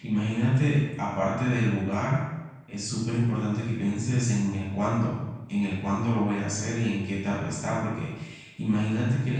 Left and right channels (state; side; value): identical; both; correlation 1.00